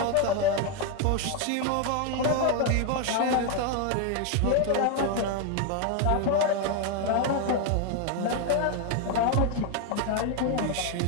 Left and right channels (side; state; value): both; different; correlation 0.01